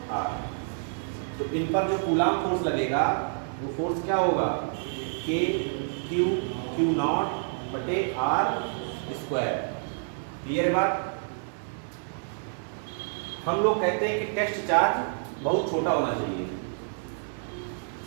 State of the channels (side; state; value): left; silent; 59 dB below the other